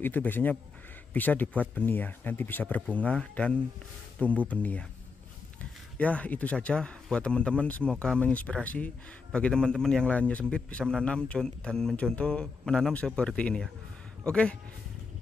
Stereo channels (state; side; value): quieter; right; 4.6 dB